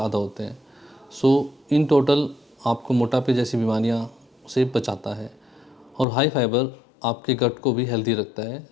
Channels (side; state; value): right; drops out; at 6.1 s